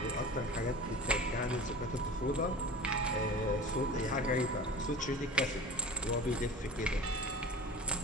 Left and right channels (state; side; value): normal; both; correlation 0.37